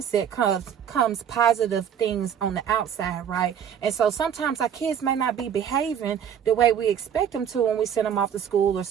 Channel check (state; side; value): quieter; left; 8.6 dB